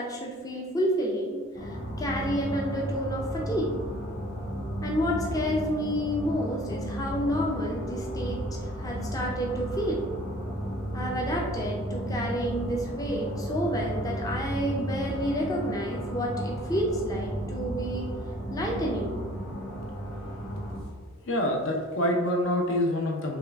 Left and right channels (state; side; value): normal; both; correlation 0.51